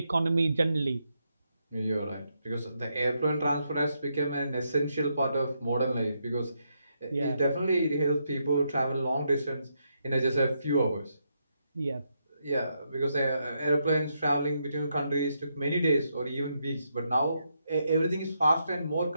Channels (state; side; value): inverted; both; correlation -0.80